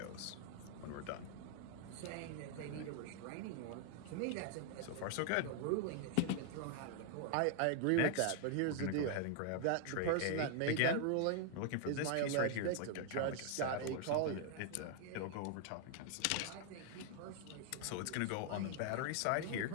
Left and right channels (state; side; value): different; both; correlation 0.00